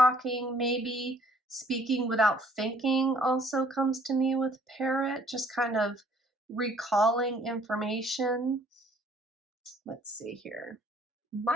maybe speaking without thinking also comes to me with parrot, just kind of recalling information. Let's see here.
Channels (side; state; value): both; normal; correlation 0.59